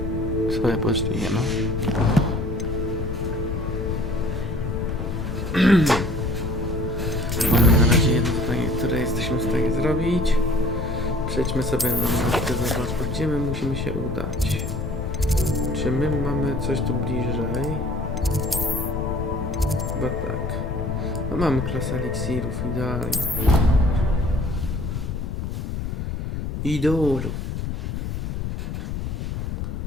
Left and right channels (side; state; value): left; noise; rumble, 3 dB below the sound